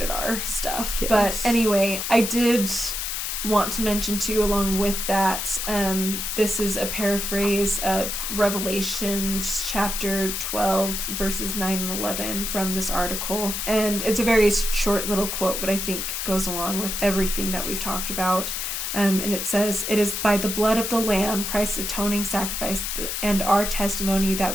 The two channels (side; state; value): left; noise; hiss, 3 dB below the sound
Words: R stuff. Yes. But anyway, I did want to mention too, along with that, this is a paraphrase of Revelations chapter 12 verses 9 and 11 from this article, and it's a very short little quote, but I think goes along with everything that we've talked about. And it says, "It is by the blood of the Lamb, Christ's atoning sacrifice, and our testimony